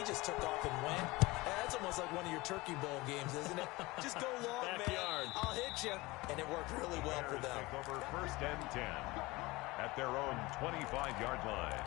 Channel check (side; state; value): right; quieter; 21.5 dB